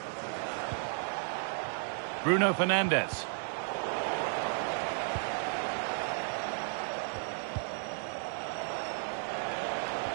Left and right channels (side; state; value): left; silent; 55 dB below the other